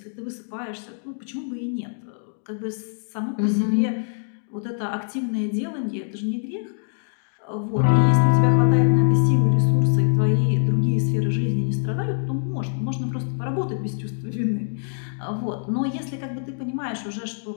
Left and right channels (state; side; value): silent; right; digital silence